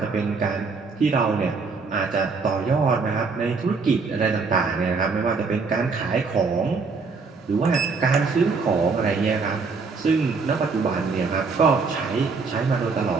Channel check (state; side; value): quieter; left; 4.6 dB